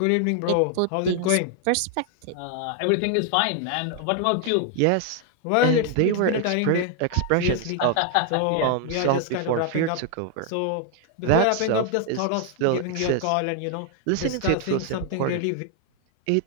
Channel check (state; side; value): different; both; correlation 0.00